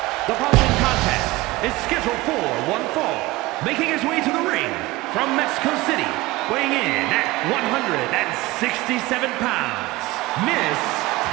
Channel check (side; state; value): left; quieter; 19.9 dB